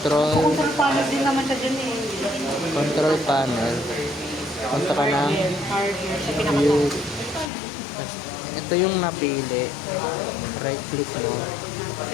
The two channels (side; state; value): right; drops out; at 7.5 s